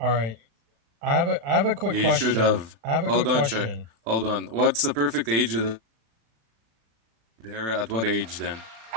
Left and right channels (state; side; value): late; left; 36 ms